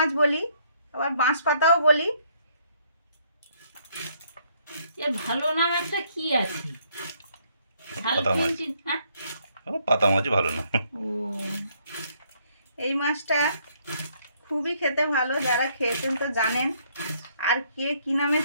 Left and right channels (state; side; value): inverted; both; correlation -0.67